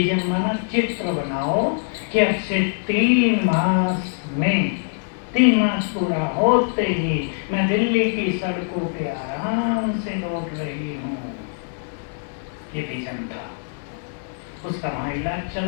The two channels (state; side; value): silent; right; 61 dB below the other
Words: माना चित्र बनाओ कि अब से 3 मास में 3 मास पूरा होते ही मैं दिल्ली की सड़कों पे आराम से दौड़ रही हूँ। ये विजन था उसका। वहाँ इलाज